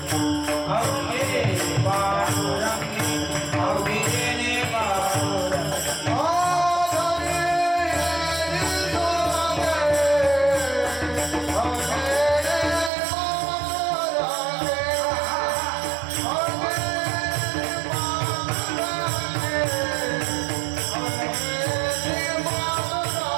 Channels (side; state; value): left; drops out; at 12.9 s